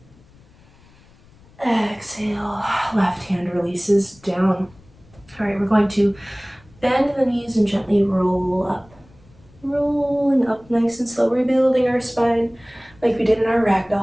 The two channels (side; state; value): left; noise; rumble, 27 dB below the sound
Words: Exhale, left hand releases down. All right, we're going to bend the knees and gently roll up. Rolling up nice and slow, rebuilding our spine like we did in our